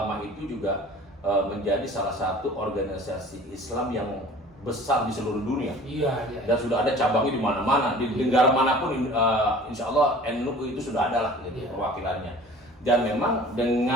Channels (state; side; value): normal; both; correlation 0.45